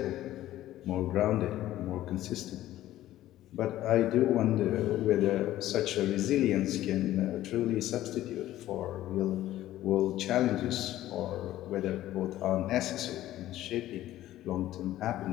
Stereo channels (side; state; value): right; quieter; 14.2 dB